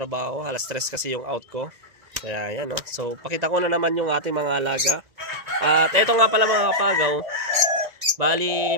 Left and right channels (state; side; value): late; left; 2.0 ms